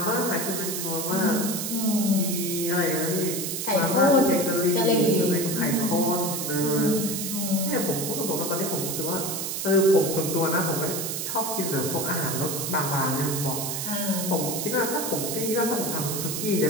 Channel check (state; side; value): noise; right; hiss, 3 dB below the sound